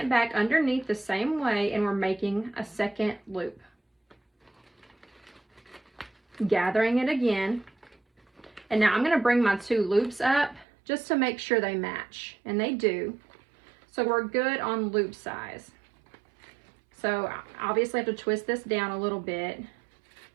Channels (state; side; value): drops out; left; at 10.7 s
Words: back underneath the same way, and we're making a second loop. Gathering it again. And now I'm going to bring my 2 loops up just to make sure they match, and they do. So we're good on loop size. So obviously I have to twist this down a little bit